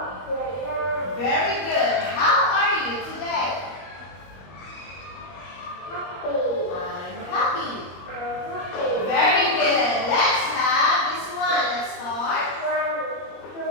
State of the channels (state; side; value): late; right; 21 ms